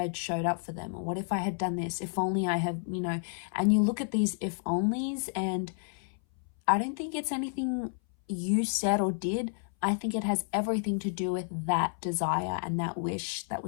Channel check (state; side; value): silent; right; 57 dB below the other